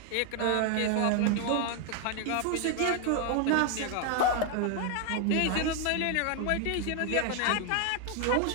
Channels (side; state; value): both; different; correlation 0.01